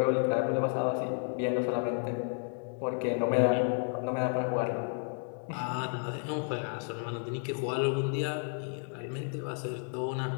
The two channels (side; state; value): right; silent; 55 dB below the other